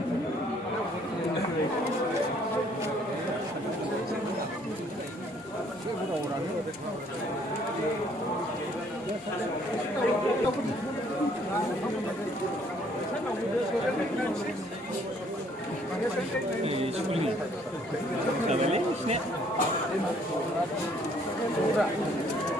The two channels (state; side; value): normal; both; correlation 0.63